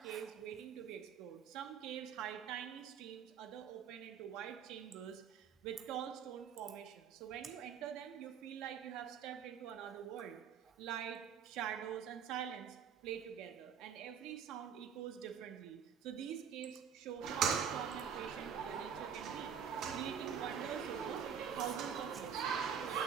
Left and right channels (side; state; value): left; quieter; 7.7 dB